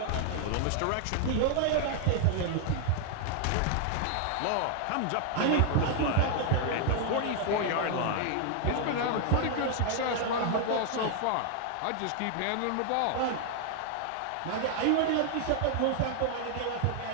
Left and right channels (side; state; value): both; different; correlation 0.00